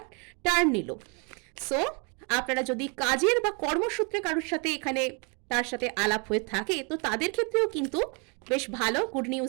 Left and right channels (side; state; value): left; quieter; 33.9 dB